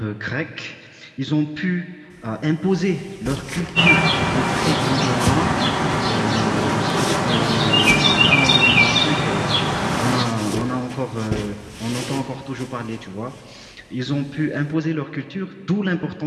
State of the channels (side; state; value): both; identical; correlation 1.00